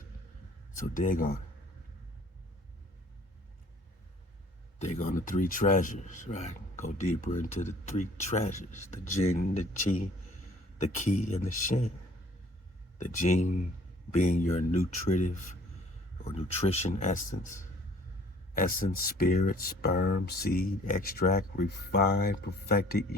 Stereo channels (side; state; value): both; normal; correlation 0.55